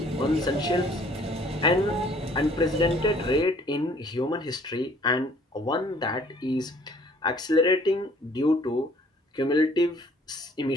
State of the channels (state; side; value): normal; both; correlation 0.57